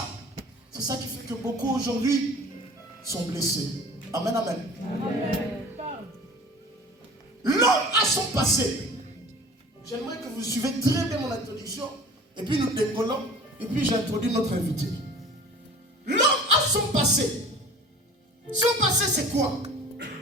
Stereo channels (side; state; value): both; normal; correlation 0.43